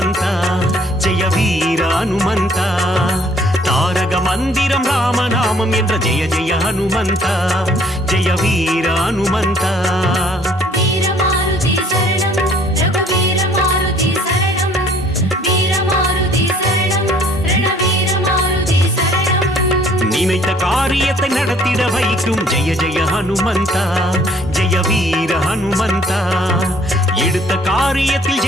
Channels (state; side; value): normal; both; correlation 0.59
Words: ஜெய வீர ஹனுமந்த தாரக மந்திரம் ராமநாமம் என்ற ஜெய ஜெய ஹனுமந்த ஜெய வீர ஹனுமந்த நினைத்த காரியத்தை நடத்திட வைக்கும் ஜெய ஜெய ஹனுமந்த ஜெய வீர ஹனுமந்த எடுத்த காரியத்தில்